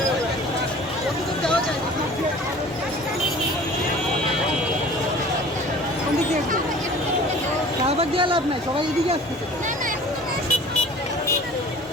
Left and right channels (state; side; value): normal; both; correlation 0.45